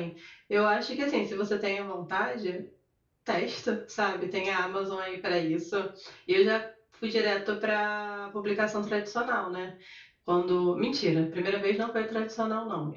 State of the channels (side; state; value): both; identical; correlation 1.00